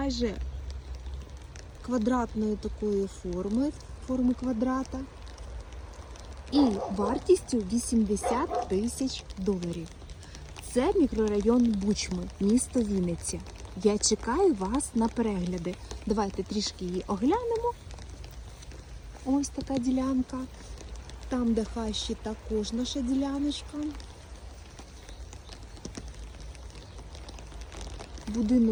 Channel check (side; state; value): both; identical; correlation 1.00